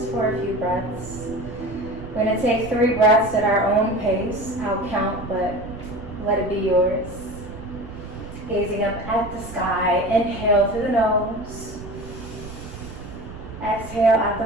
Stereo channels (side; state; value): right; noise; rumble, 12 dB below the sound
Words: for a few breaths. We're going to take 3 breaths at our own pace. I'll count, but let it be yours. Gazing up at the sky, inhale through the nose. Exhale out